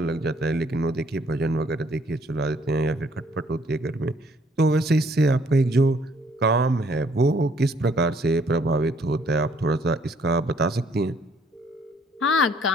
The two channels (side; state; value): both; normal; correlation 0.64